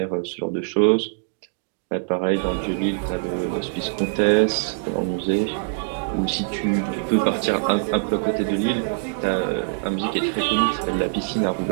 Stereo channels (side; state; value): left; silent; digital silence